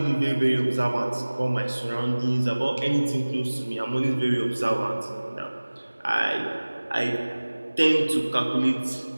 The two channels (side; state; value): both; inverted; correlation -1.00